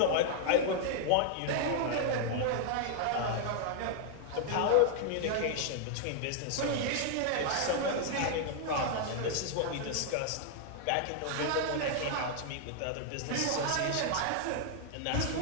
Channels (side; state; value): both; different; correlation 0.00